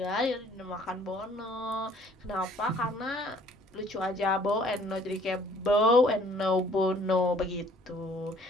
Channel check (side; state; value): both; normal; correlation 0.58